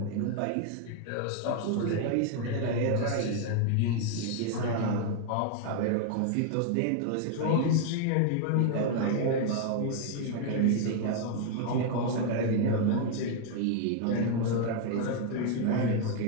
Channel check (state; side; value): different; both; correlation 0.00